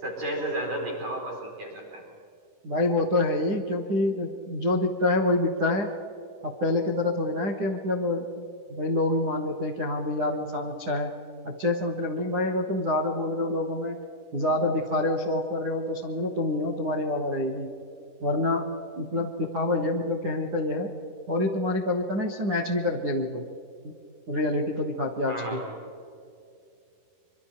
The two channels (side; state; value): left; late; 10 ms